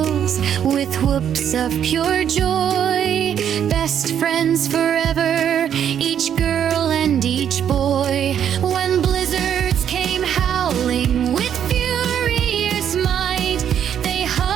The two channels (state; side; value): quieter; left; 9.1 dB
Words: with whoops of pure joy, best friends forever, each girl and each boy. When blizzards came howling with furious might, they